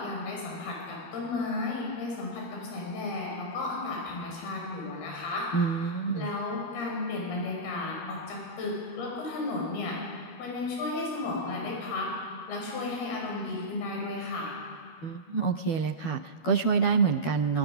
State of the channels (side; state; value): right; late; 13 ms